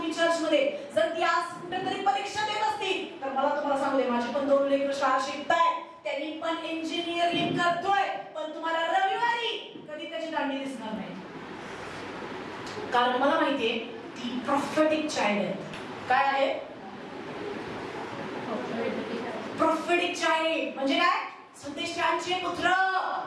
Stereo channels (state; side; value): identical; both; correlation 1.00